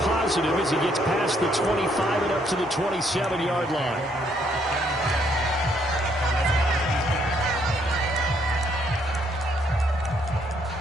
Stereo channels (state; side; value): normal; both; correlation 0.70